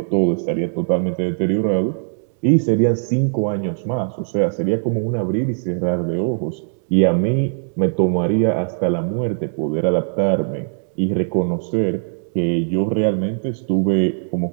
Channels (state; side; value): silent; left; digital silence